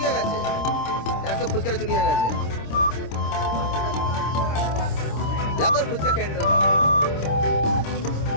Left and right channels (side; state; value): right; late; 26 ms